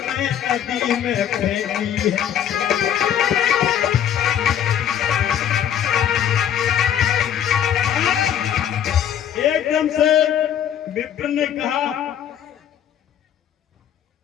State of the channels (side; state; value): right; quieter; 9.6 dB